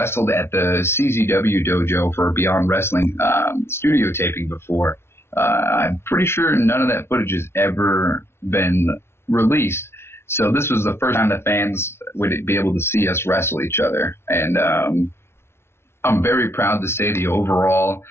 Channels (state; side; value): late; right; 0.12 ms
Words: at the CZW dojo for Beyond Wrestling, studio taping before. I'm pretty sure none of that footage has ever been released. So this was the first time the fans would be able to see us wrestle each other. And, I'm very proud to say the overall,